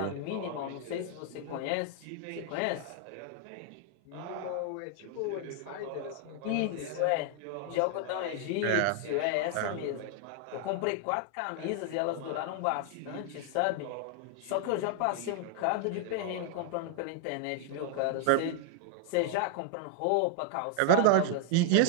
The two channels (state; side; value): different; both; correlation 0.00